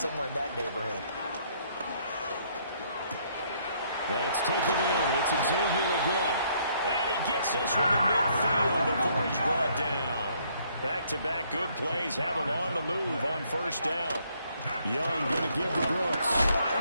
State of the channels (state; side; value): inverted; both; correlation -0.67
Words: in that neighborhood. That's taken in. It's Xavier again. And he gets this one to midfield before he's brought down. Back-to-back good plays have him on the move on first down. Young going to give to Brooks.